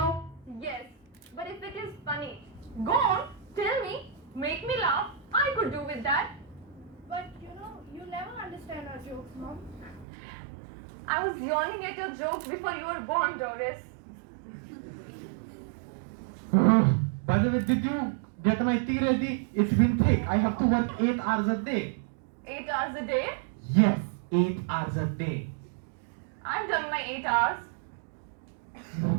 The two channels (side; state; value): left; drops out; at 10.1 s